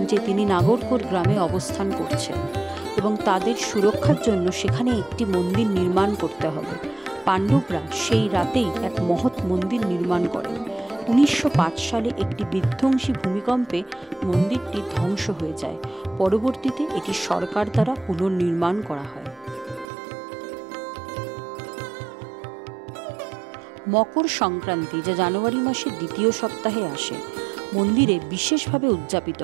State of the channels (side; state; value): left; drops out; at 19.9 s